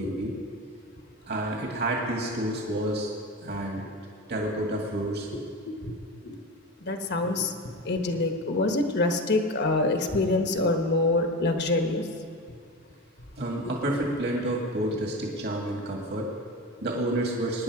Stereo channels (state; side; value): normal; both; correlation 0.26